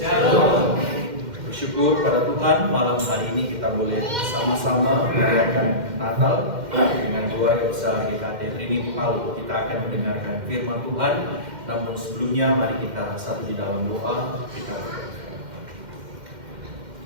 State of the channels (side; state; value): left; late; 2.1 ms